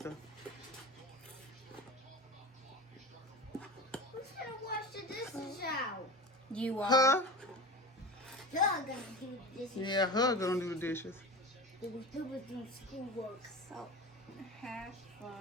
Who's gonna wash the dishes out? You are. Her? You're gonna do the dishes. Yeah, her gonna do the dishes. Do schoolwork. Salt. Half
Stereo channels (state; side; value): normal; both; correlation 0.31